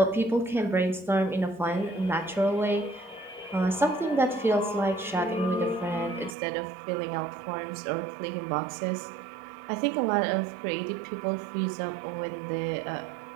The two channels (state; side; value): drops out; left; at 6.4 s